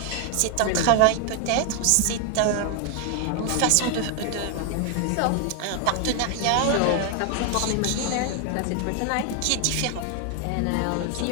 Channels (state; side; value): different; both; correlation 0.00